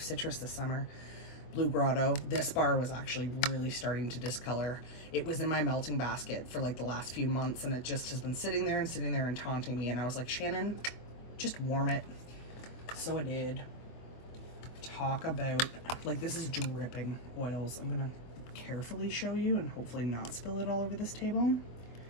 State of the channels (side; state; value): right; late; 24 ms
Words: citrus this summer. Blue Grotto. This bar was actually really starting to discolor. It was in my melting basket for like the last few months, and it just has been sitting there and taunting me. And I was like, Shannon, just warm it. So I did. Talk about, like, this is dripping oils. I'm gonna carefully show you and hopefully not spill it all over this table.